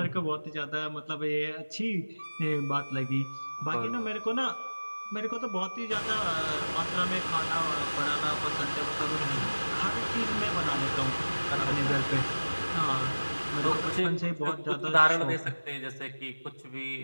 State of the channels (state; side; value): inverted; both; correlation -1.00